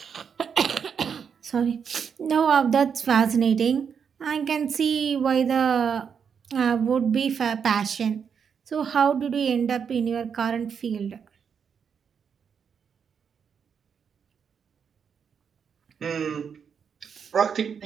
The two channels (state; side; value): quieter; left; 6.9 dB